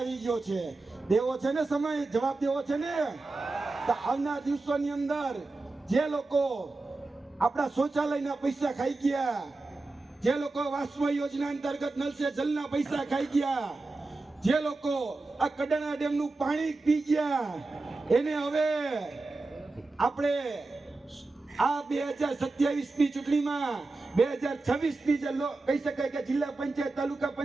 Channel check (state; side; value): quieter; left; 3.4 dB